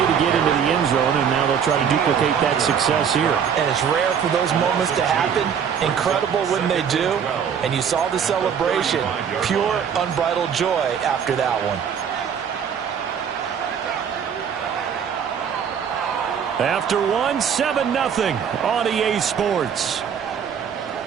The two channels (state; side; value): quieter; left; 7.6 dB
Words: get into the end zone, and now they'll try to duplicate that success here. And it's rare for those moments to happen. Incredible when they do. And you saw the celebration. Pure, unbridled joy after that one. After one, 7-0 on EA Sports.